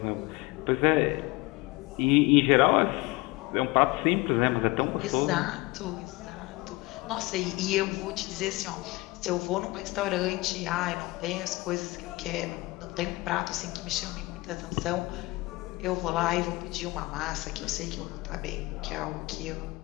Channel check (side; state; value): right; quieter; 22.4 dB